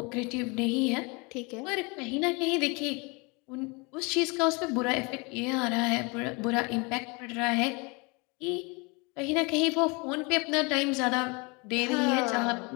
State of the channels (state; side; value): quieter; right; 28.9 dB